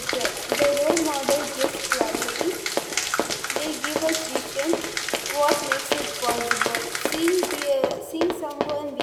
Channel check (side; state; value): both; identical; correlation 1.00